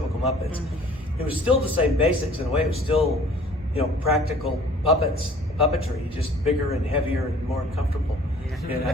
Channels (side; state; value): both; normal; correlation 0.52